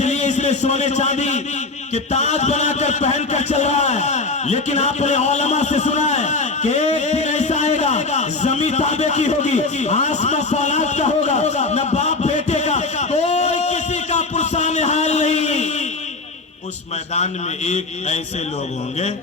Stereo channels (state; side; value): quieter; right; 3.7 dB